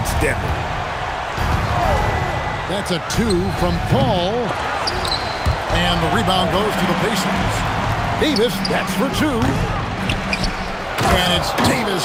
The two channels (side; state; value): both; identical; correlation 1.00